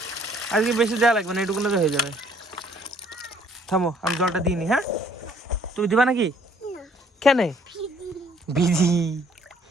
আজকে বেশি দেওয়া লাগবে না, এটুকুনো তো হয়ে যাবে। থামো আমি জলটা দিইনি। হ্যাঁ তুমি দিবা নাকি? কেন ভিজি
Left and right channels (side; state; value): both; normal; correlation 0.61